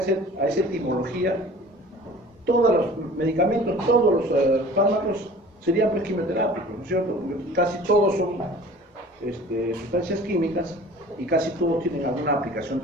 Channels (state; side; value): normal; both; correlation 0.45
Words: etimología, todos los medicamentos, todos los fármacos serían pues quimioterápicos, ¿no es cierto? Porque casi todos son sustancias químicas y casi todos tienen alguna aplicación